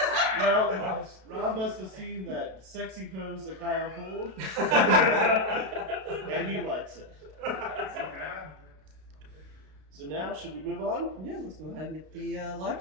Well, Rob must have seen that sexy pose that Kyle pulled, and he likes it. So now, should we move on? Yeah, let's go ahead and get the live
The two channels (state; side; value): late; left; 32 ms